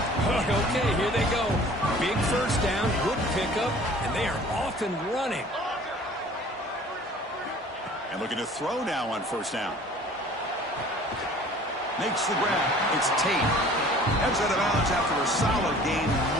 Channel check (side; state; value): both; normal; correlation 0.49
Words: Okay, here they go. Big first down, good pickup, and they are off and running. And looking to throw now on 1st down. Makes the grab. It's Tate. Heads out of bounds after a solid gain,